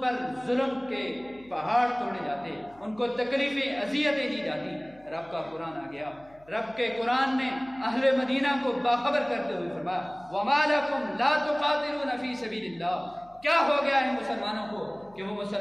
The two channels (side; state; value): left; noise; hum, 28 dB below the sound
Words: پر ظلم کے پہاڑ توڑے جاتے، ان کو تکلیفیں اذیتیں دی جاتی۔ رب کا قرآن آ گیا، رب کے قرآن نے اہل مدینہ کو باخبر کرتے ہوئے فرمایا وَمَا لَكُمْ لَا تُقَاتِلُونَ فِي سَبِيلِ اللَّهِ۔ کیا ہو گیا ہے مسلمانوں کو کہ وہ